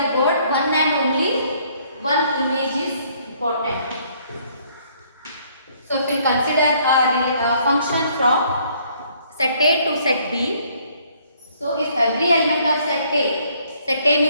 word one and only one image is important. So if we consider a function from set A to set B, so if every element of set A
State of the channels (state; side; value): inverted; both; correlation -0.64